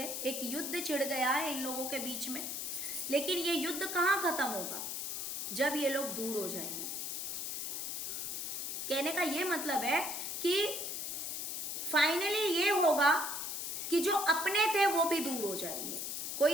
एक युद्ध छिड़ गया है इन लोगों के बीच में। लेकिन ये युद्ध कहाँ खत्म होगा? जब ये लोग दूर हो जाएंगे। कहने का ये मतलब है कि फाइनली ये होगा कि जो अपने थे वो भी दूर हो जाएंगे।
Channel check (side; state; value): left; noise; hiss, 3 dB below the sound